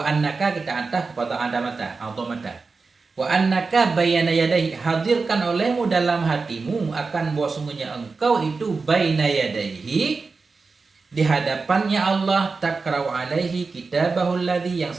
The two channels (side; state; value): left; quieter; 4.3 dB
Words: annaka, kita ataf kepada adamata. Wa annaka baina yadayhi, hadirkan olehmu dalam hatimu akan bahwa sungguhnya engkau itu baina yadayhi, di hadapannya Allah, takra'u alaihi kitabahu alladhi, yang